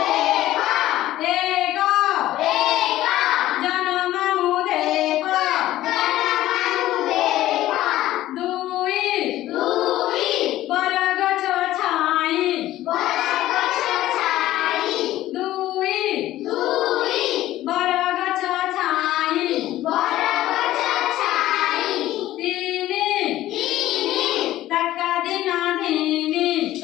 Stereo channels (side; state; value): right; quieter; 14.7 dB